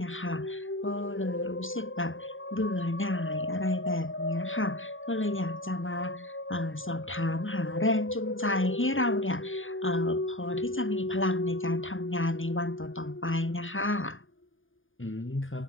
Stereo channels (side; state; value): right; late; 0.58 ms